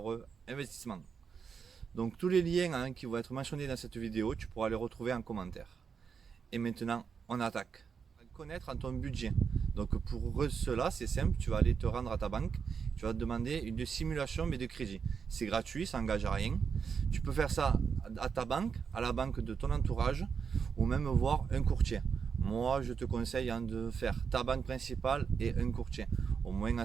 investissement. Donc tous les liens qui vont être mentionnés dans cette vidéo, tu pourras les retrouver en commentaire. Et maintenant, on attaque. Connaître ton budget. Donc pour cela, c'est simple, tu vas aller te rendre à ta banque, tu vas te demander une simulation mais de crédit. C'est gratuit, ça n'engage à rien. Tu peux faire ça à ta banque, à la banque de ton entourage ou même voir un courtier. Moi, je te conseille de faire ta banque principale et un courtier. Au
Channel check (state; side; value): quieter; left; 6.2 dB